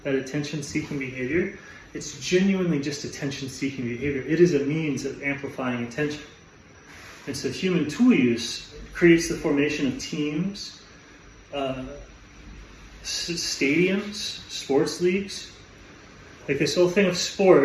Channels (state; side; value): identical; both; correlation 1.00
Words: attention-seeking behavior, it's genuinely just attention-seeking behavior. It is a means of amplifying attention. And so human tool use creates the formation of teams, stadiums, sports leagues. Like this whole thing of